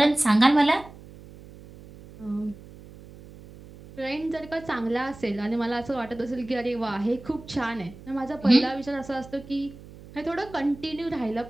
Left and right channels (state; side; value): noise; right; hum, 18 dB below the sound